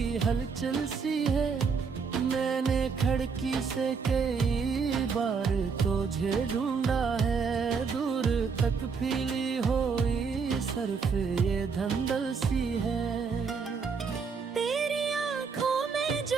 हलचल सी है। मैंने खिड़की से कई बार तुझे ढूंढा है, दूर तक फीली हुई सरफ ये धंधल सी है। तेरी आंखों में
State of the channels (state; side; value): quieter; left; 5.5 dB